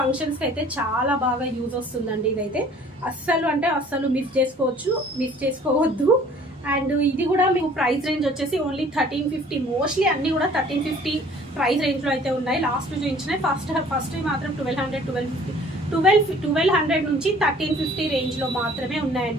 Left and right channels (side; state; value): both; normal; correlation 0.52